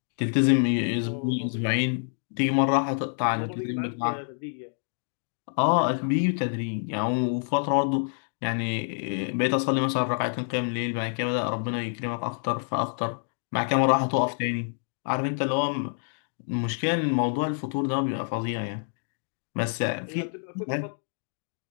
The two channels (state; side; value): silent; right; digital silence